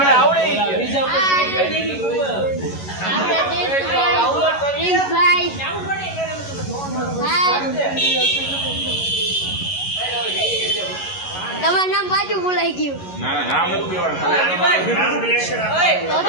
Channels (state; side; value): late; right; 11 ms